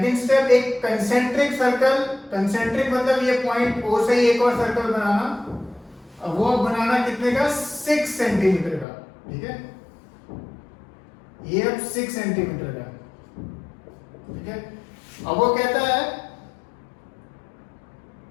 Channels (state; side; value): drops out; right; at 8.8 s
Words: स्टेप एक कंसेंट्रिक सर्कल, कंसेंट्रिक मतलब ये पॉइंट O से ही एक और सर्कल बनाना, अब वो बनाना कितने का, 6 सेंटीमीटर का, ठीक है। ये अब 6 सेंटीमीटर का, ठीक है। अब वो कहता है